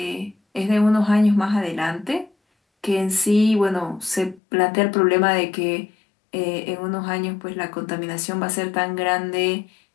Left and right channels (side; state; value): right; drops out; at 4.4 s